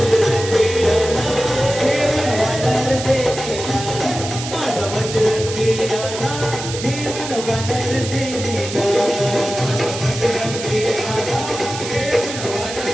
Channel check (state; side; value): noise; right; hiss, 9 dB below the sound